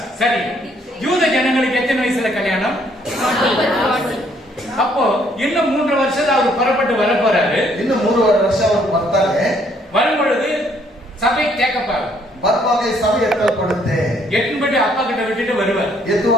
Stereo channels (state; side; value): normal; both; correlation 0.66